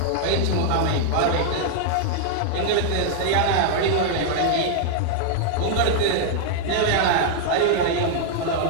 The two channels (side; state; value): both; different; correlation -0.01